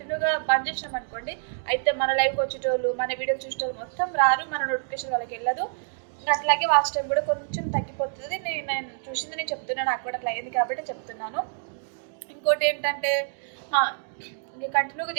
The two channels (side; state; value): left; silent; digital silence